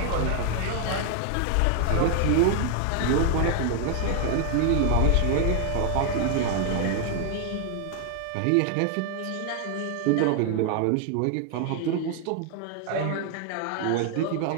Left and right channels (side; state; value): both; different; correlation 0.00